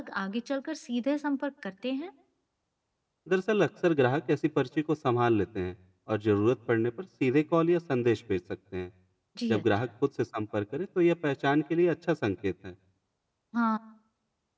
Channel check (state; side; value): identical; both; correlation 1.00